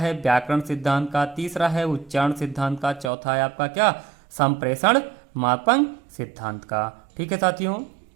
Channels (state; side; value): drops out; left; at 3.1 s